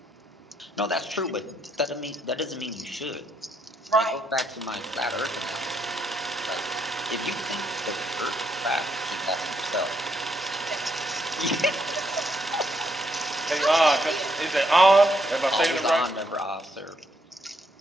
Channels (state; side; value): normal; both; correlation 0.75